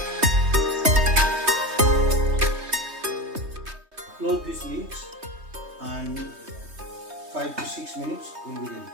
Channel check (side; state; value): left; late; 3.2 ms